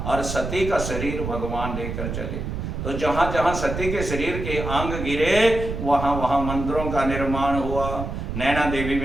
और सती का शरीर भगवान लेकर चले। तो जहाँ जहाँ सती के शरीर के अंग गिरे वहाँ वहाँ मंदिरों का निर्माण हुआ। नैना देवी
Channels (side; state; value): right; noise; rumble, 5 dB below the sound